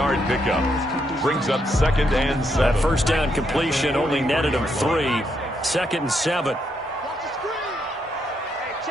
pickup. Brings up 2nd and 7. That first down completion only netted him 3. 2nd and 7.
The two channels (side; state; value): both; normal; correlation 0.77